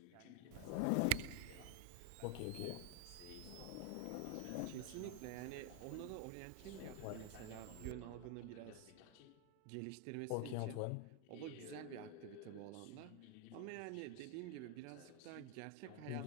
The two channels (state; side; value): different; both; correlation 0.01